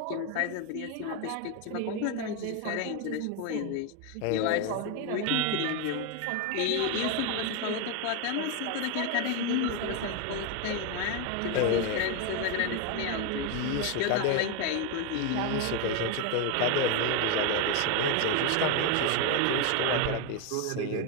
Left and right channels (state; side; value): different; both; correlation 0.01